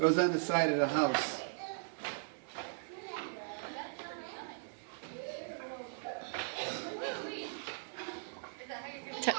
on the side of the house.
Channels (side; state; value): left; silent; digital silence